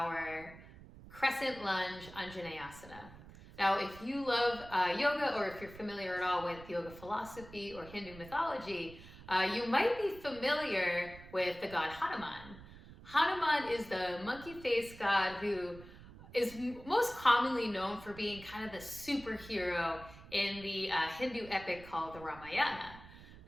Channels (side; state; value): right; noise; rumble, 18 dB below the sound